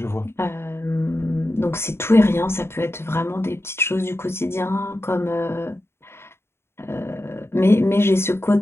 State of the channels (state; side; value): late; right; 0.12 ms